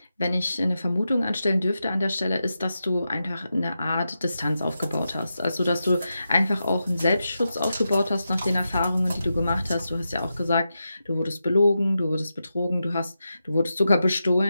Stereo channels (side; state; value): both; inverted; correlation -0.89